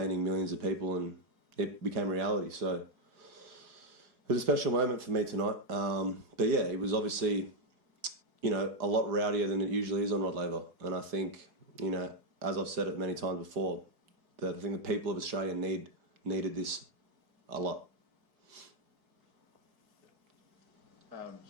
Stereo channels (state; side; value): late; left; 4.8 ms